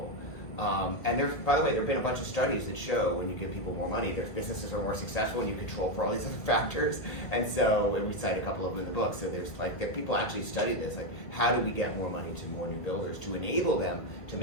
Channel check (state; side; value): late; right; 2.0 ms